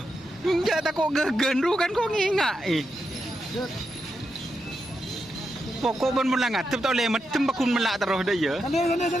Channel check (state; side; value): normal; both; correlation 0.85